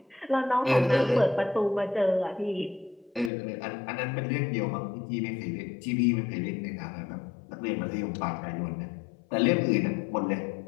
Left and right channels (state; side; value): drops out; right; at 3.3 s